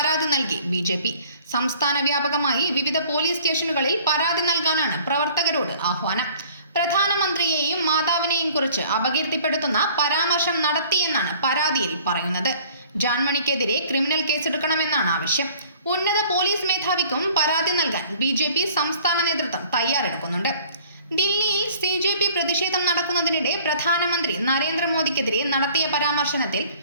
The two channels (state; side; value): inverted; both; correlation -0.52